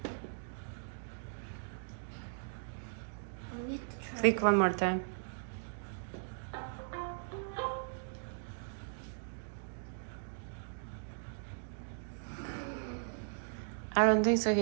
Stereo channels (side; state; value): left; silent; digital silence